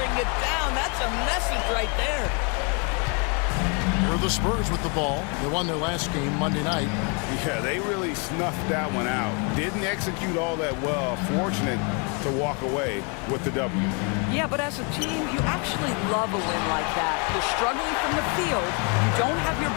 it down. That's a message right there. Here are the Spurs with the ball. They won their last game Monday night. Yeah, they really snuffed that one out. Didn't execute all that well. Fortunate to walk away with the W. Yeah, but as a team, you actually love a win like that. You're struggling from the field. You don't have your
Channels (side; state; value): right; quieter; 35.3 dB